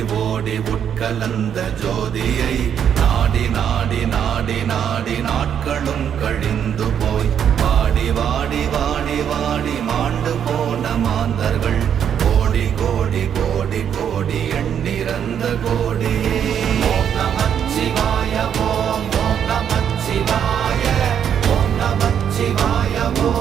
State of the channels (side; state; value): left; quieter; 8.7 dB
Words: ஓடி உட்கலந்த ஜோதியை நாடி நாடி நாடி நாடி நாட்களும் கழிந்து போய் வாடி வாடி வாடி வாடி மாண்டு போன மாந்தர்கள்